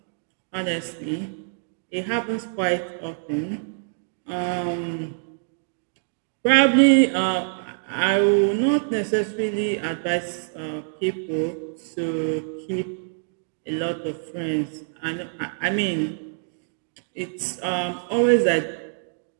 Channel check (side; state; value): left; silent; digital silence